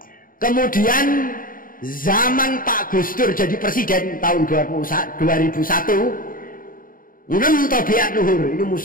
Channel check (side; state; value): right; late; 0.41 ms